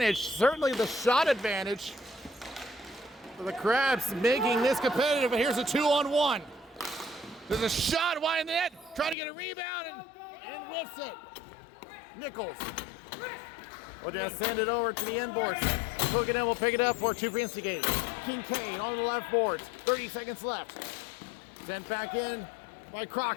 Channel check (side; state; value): right; drops out; at 9.2 s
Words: certainly the shot advantage. For the Crabs making this competitive, and here's a 2-on-1. There's a shot wide in the net, trying to get a rebound and whiffs it. Nichols will just send it over to the end boards. Cooking in will pick it up for 2 for instigating. Kincaid on the left boards, 30 seconds left. Sent back in by